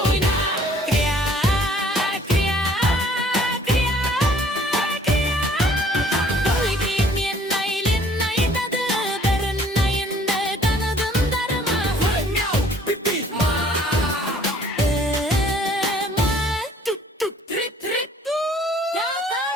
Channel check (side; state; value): both; normal; correlation 0.57